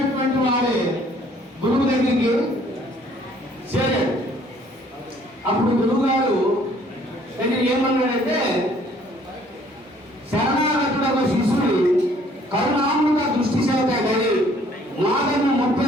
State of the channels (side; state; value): both; normal; correlation 0.59